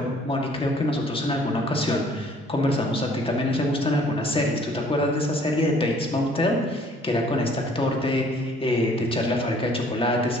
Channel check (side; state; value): both; normal; correlation 0.58